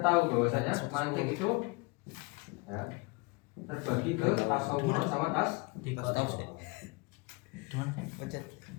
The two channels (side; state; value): right; quieter; 27.4 dB